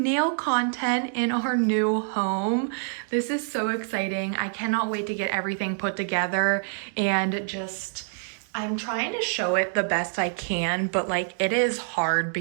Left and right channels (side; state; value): left; silent; digital silence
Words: nail content in our new home. This is so exciting. I cannot wait to get everything put together and just... I'm trying to show it the best I can, but like it is hard